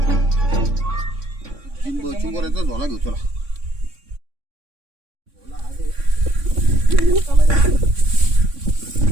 चिमुऱ्याचा झोला घेऊ चला.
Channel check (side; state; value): left; late; 3.6 ms